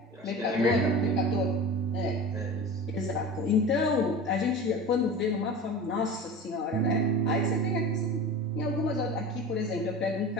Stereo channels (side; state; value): both; normal; correlation 0.33